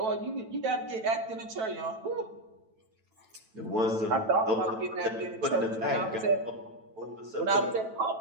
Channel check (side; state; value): left; late; 9.1 ms